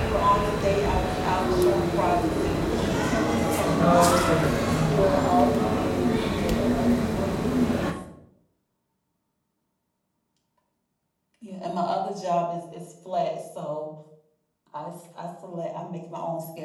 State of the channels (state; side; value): identical; both; correlation 1.00